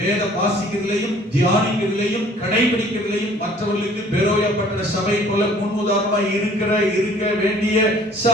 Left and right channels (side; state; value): both; normal; correlation 0.54